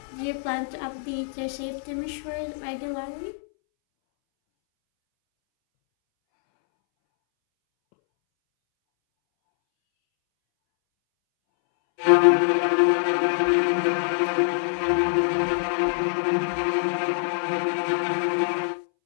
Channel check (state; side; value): silent; right; 62 dB below the other